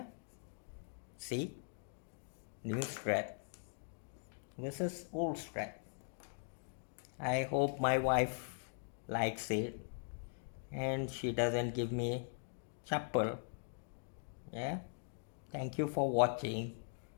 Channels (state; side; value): silent; right; digital silence